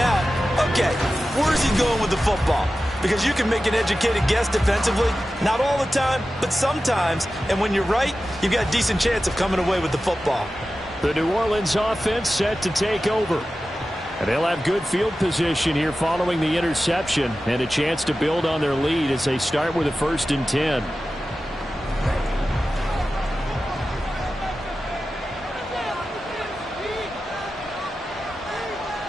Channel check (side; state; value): both; normal; correlation 0.94